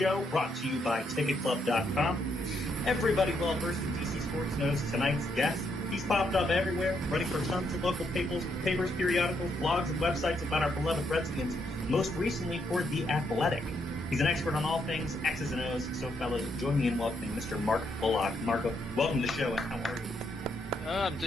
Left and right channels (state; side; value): normal; both; correlation 0.76